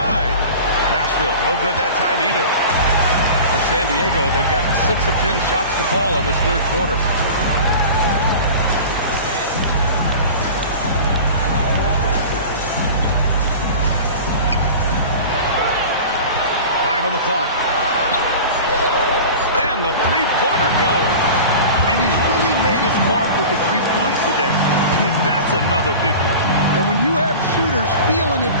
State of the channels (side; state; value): both; inverted; correlation -0.36